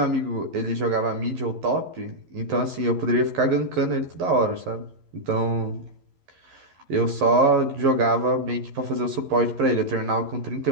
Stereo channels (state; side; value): late; left; 11 ms